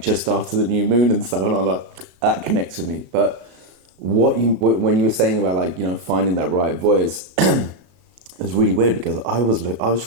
just after the new moon and stuff. And I'm like, that connects with me. But when you were saying about like, you know, finding that right voice, it was really weird, because I was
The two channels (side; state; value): left; late; 33 ms